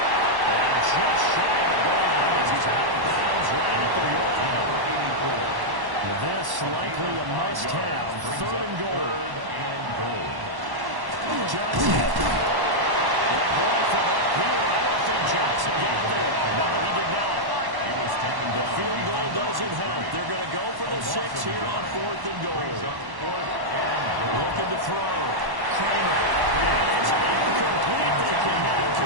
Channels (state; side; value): late; left; 1.1 ms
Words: And just shy of the goal line as he's out of bounds right at the wall. This likely a must-have. 3rd and goal. Johnson. Boy, from up here, I don't think Johnson got there. No, he did not. He was taken The down. field goal doesn't help. They're going to go for the 6 here on 4th and goal. Looking to throw. Cramer. And it's incomplete. They cannot